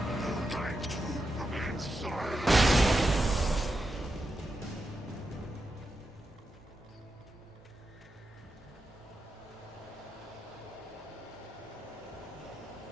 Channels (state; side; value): normal; both; correlation 0.87